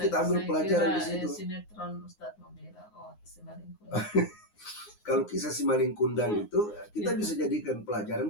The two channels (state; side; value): late; right; 9.6 ms